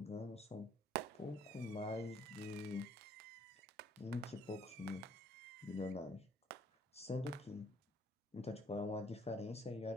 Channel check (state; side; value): normal; both; correlation 0.62